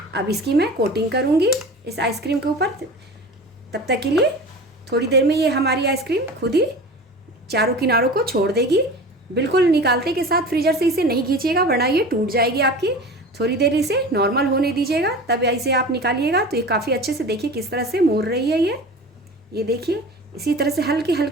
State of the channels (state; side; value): normal; both; correlation 0.35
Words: अब इसकी मैं कोटिंग करूँगी इस आइसक्रीम के ऊपर। तब तक के लिए थोड़ी देर में ये हमारी आइसक्रीम खुद ही चारों किनारों को छोड़ देगी। बिल्कुल निकालते के साथ फ्रीजर से इसे नहीं खींचिएगा वरना ये टूट जाएगी आपकी। थोड़ी देर इसे नॉर्मल होने दीजिएगा, तब इसे आप निकालिएगा। तो ये काफ़ी अच्छे से देखिए किस तरह से मुड़ रही है ये देखिए। इसी तरह से हल्के